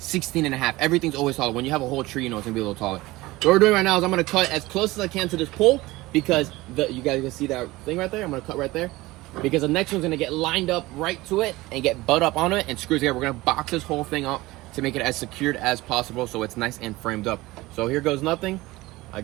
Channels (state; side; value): quieter; left; 19.7 dB